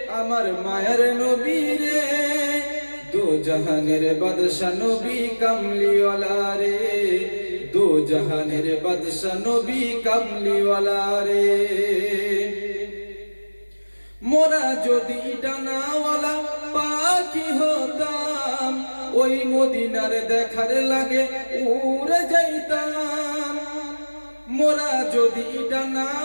আমার মায়ার নবী রে, দো জাহানের বাদশা নবী কামলিওয়ালা রে, দো জাহানের বাদশা নবী কামলিওয়ালা রে। মোরা যদি ডানাওয়ালা পাখি হতাম, ওই মদিনার দেখার লাগে উড়ে যাইতাম। মোরা যদি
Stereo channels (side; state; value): both; inverted; correlation -1.00